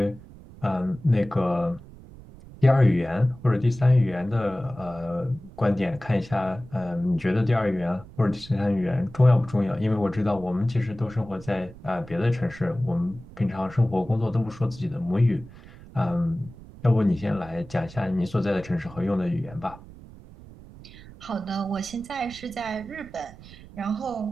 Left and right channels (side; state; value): right; noise; rumble, 18 dB below the sound